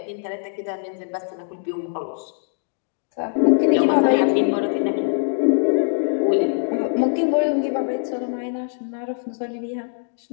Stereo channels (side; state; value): right; silent; digital silence